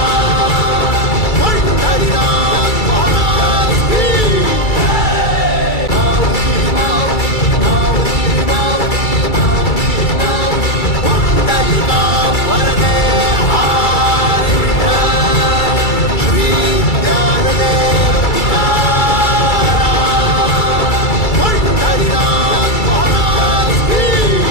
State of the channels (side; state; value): right; late; 2.3 ms